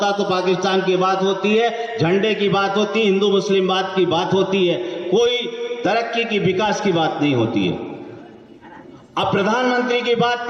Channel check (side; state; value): both; identical; correlation 1.00